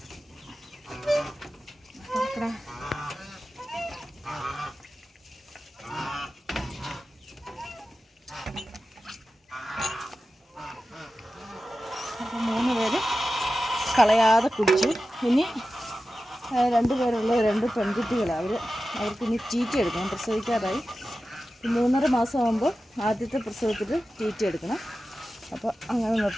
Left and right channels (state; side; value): normal; both; correlation 0.93